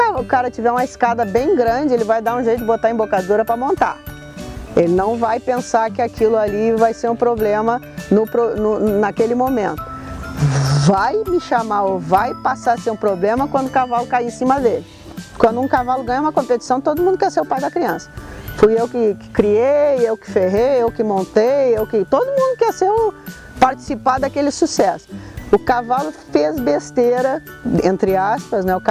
o cara tiver uma escada bem grande, ele vai dar um jeito de botar embocadura para montar. Ele não vai pensar que aquilo ali vai ser um problema naquele momento. Vai me chamar ou vai passar a ser um problema quando o cavalo cair em cima dele. Quando um cavalo ganha uma competição, todo mundo quer ser o pai da criança. Fui eu que criei, eu que ferrei, eu que montei, todo mundo quer participar daquele sucesso. O cavalo fez besteira, entre aspas, né? O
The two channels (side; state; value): both; identical; correlation 1.00